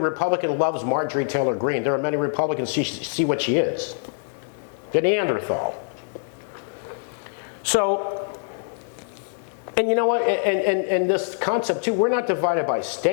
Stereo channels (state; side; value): silent; right; digital silence